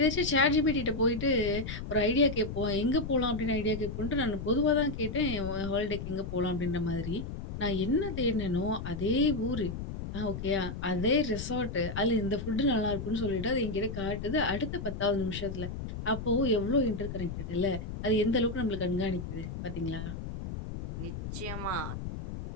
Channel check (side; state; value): left; noise; rumble, 7 dB below the sound